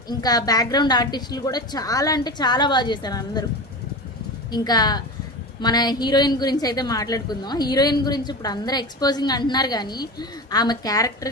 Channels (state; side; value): normal; both; correlation 0.27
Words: ఇంకా బ్యాక్గ్రౌండ్ ఆర్టిస్టులు కూడా చాలా అంటే చాలా బాగా చేశారు అందరూ. ఇంకా మన హీరోయిన్ గురించి అయితే మాట్లాడుకుందాం. హీరోయిన్ గురించి ఇప్పుడు అందరూ ఎక్స్పోజింగ్ అంటున్నారు, కానీ ఆమె క్యారెక్టర్